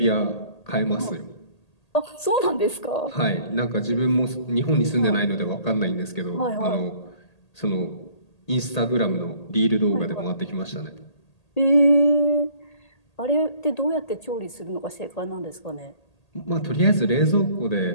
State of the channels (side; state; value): right; late; 1.8 ms